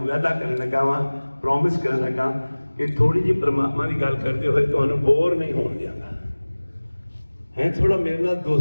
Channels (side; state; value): both; inverted; correlation -1.00